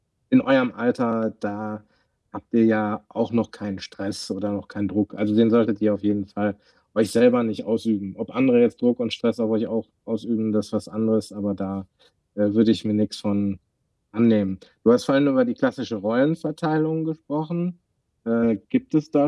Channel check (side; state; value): both; identical; correlation 1.00